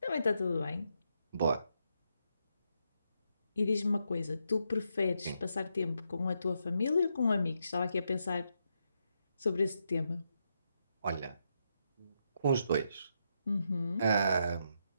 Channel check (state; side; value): inverted; both; correlation -0.81